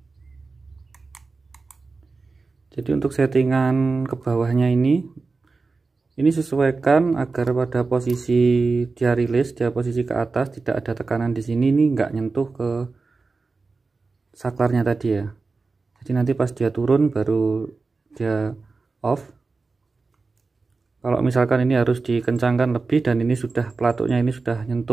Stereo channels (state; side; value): quieter; left; 4.1 dB